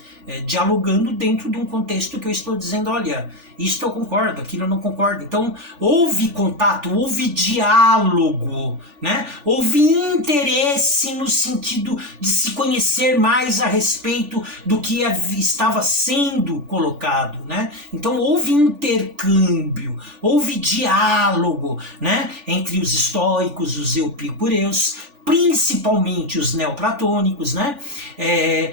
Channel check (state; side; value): late; left; 3.4 ms